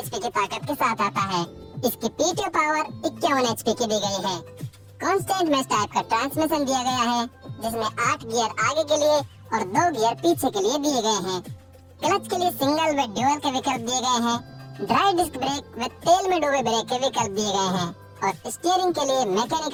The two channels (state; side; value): identical; both; correlation 1.00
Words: की ताकत के साथ आता है। इसकी पीटीओ पावर 51 एचपी की दी गई है। कांस्टेंट मैश टाइप का ट्रांसमिशन दिया गया है, जिसमें 8 गियर आगे के लिए और 2 गियर पीछे के लिए दिए गए हैं। क्लच के लिए सिंगल व ड्यूअल के विकल्प दिए गए हैं। ड्राई डिस्क ब्रेक व तेल में डूबे ब्रेक के विकल्प दिए गए हैं और स्टीयरिंग के लिए